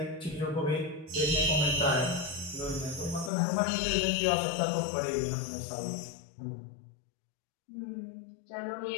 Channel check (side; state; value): right; drops out; at 3.3 s